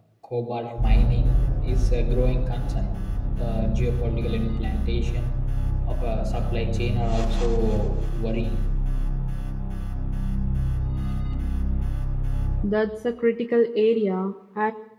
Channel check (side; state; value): both; identical; correlation 1.00